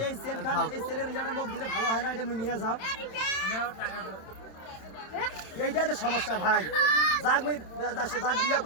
এই সেলের রিজাল্টের মুখ দিলে ভালো হয় না, এটা নিয়ে যাও। এইটাই তো সমস্যা ভাই। যাক বিয়া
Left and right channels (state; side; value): late; right; 27 ms